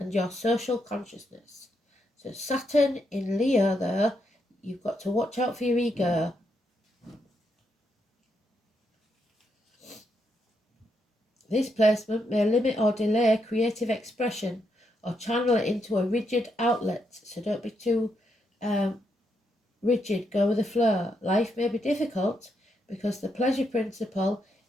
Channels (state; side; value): normal; both; correlation 0.80